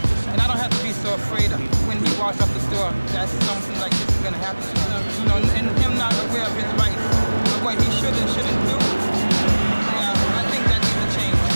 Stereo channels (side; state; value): both; inverted; correlation -1.00